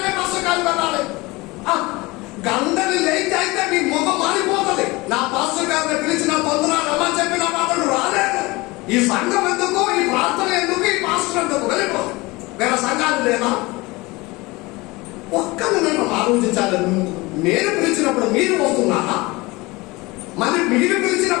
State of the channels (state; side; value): quieter; right; 22.7 dB